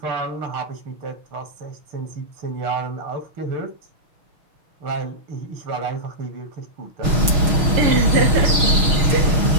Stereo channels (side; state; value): left; late; 6.3 ms